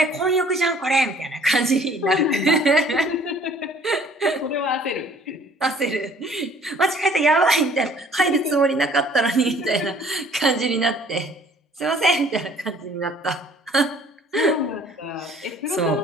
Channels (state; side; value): normal; both; correlation 0.55